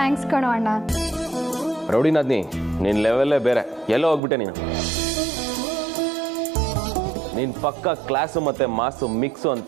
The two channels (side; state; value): left; drops out; at 4.2 s